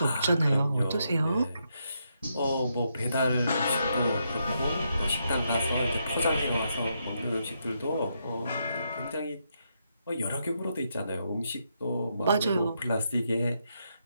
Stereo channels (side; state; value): both; inverted; correlation -0.80